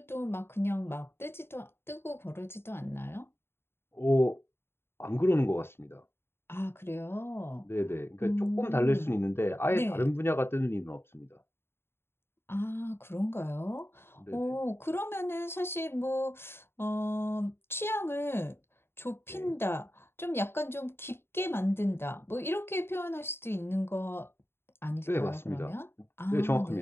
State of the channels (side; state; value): right; late; 0.11 ms